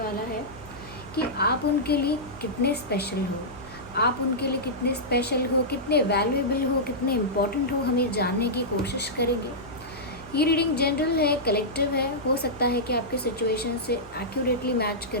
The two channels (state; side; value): normal; both; correlation -0.13